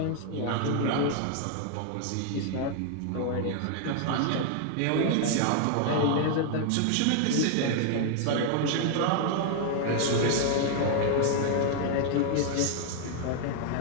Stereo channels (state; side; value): different; both; correlation 0.00